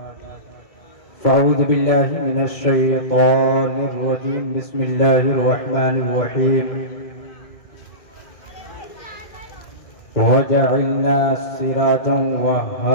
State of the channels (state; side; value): late; right; 2.2 ms